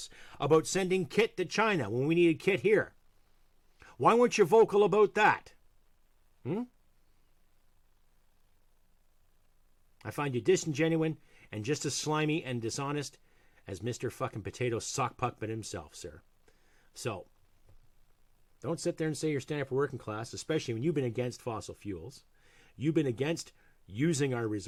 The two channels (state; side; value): identical; both; correlation 1.00